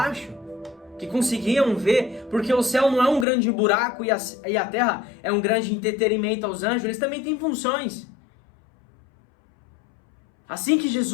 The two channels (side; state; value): right; drops out; at 3.2 s